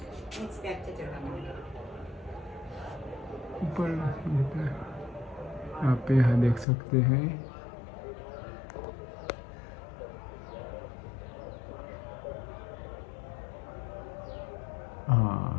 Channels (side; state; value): right; drops out; at 6.7 s